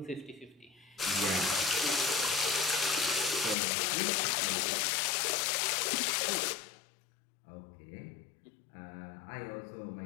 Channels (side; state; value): right; drops out; at 3.6 s